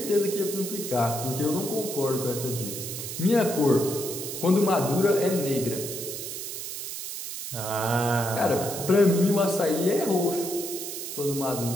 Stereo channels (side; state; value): right; noise; hiss, 7 dB below the sound